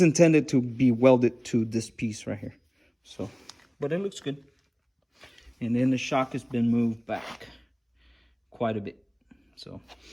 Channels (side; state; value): both; identical; correlation 1.00